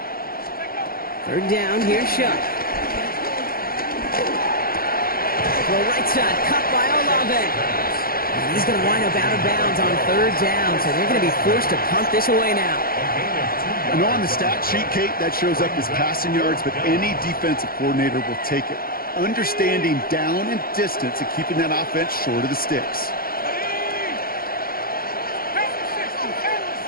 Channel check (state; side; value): late; right; 0.43 ms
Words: Third down, here's Shuck. Throw right side, cut by Olave. And he's going to wind up out of bounds on third down, so they're going to be forced to punt this away now. You know, on the stat sheet, Kate, that shows up as passing yards, but any defensive coordinator will take it. Understanding down and distance and keeping that offense short of the sticks.